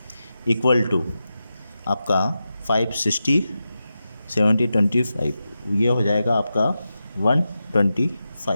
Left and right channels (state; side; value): inverted; both; correlation -0.91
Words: इक्वल टू आपका 560 70 25, ये हो जाएगा आपका